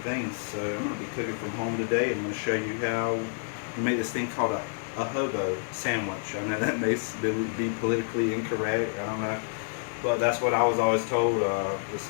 So I'm going to be cooking from home today and I'm going to show you how we make this thing called a hobo sandwich. I know that may be politically incorrect, I don't know, but that's what I was always told. It's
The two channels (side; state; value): right; silent; digital silence